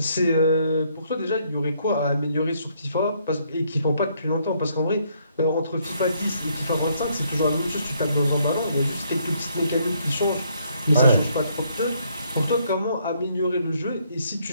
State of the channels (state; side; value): inverted; both; correlation -0.70